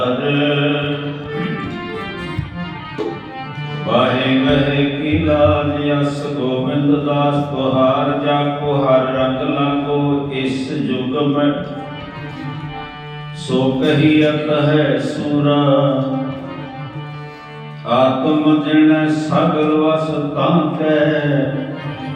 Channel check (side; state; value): both; identical; correlation 1.00